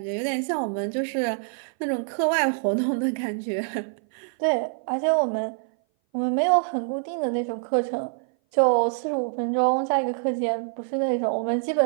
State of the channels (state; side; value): silent; left; 58 dB below the other